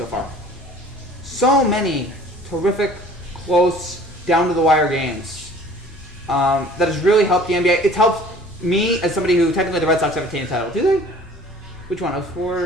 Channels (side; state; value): both; normal; correlation 0.49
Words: far. So many terrific, close, down to the wire games. That has really helped the NBA. It's helped me as somebody who technically the Red Sox have attained a title. Do they? Which one?